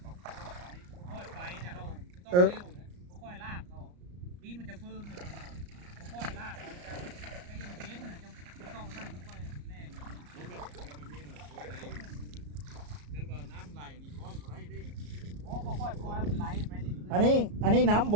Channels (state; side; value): late; left; 34 ms